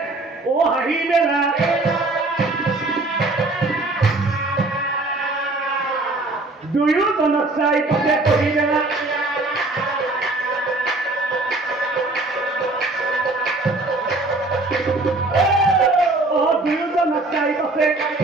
ও হাঁহি মেলা দুয়োজনক চাই পথে পঢ়ি মেলা দুয়োজনক চাই পথে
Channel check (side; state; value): left; quieter; 3.0 dB